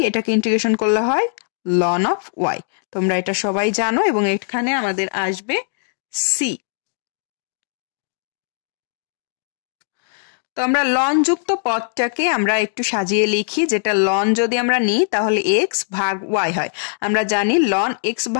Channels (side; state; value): right; silent; digital silence